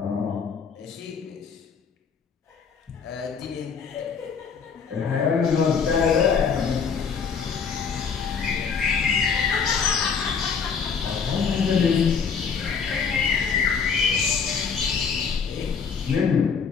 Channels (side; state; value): right; quieter; 6.0 dB